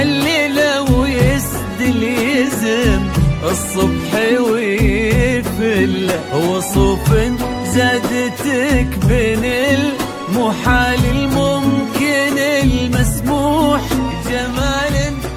ويسدل يزم الصبح ويفل وصوف زادتك بين المحال الممكن المسموح جمال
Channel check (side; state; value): both; identical; correlation 1.00